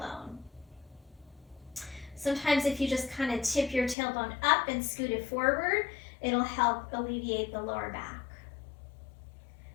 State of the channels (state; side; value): drops out; right; at 4.0 s